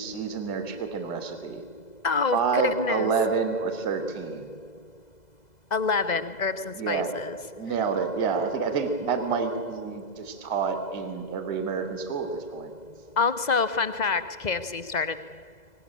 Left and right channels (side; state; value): right; late; 2.0 ms